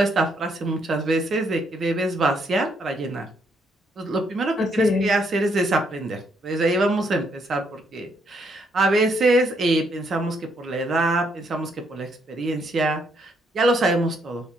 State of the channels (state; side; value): normal; both; correlation 0.73